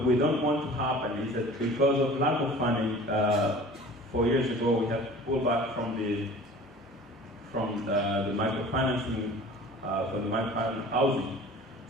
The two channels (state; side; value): normal; both; correlation 0.44